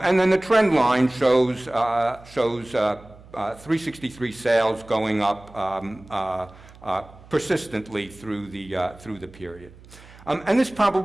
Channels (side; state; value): right; noise; hum, 22 dB below the sound